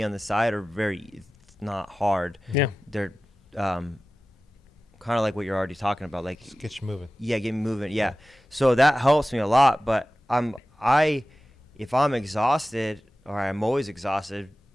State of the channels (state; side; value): normal; both; correlation 0.95